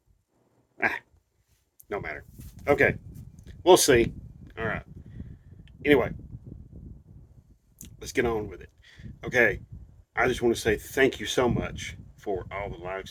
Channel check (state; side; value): identical; both; correlation 1.00